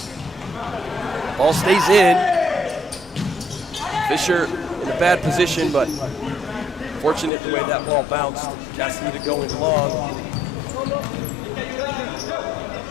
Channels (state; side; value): drops out; right; at 7.3 s